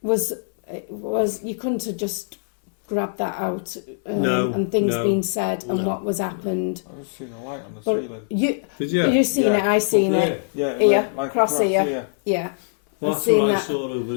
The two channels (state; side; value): silent; right; 64 dB below the other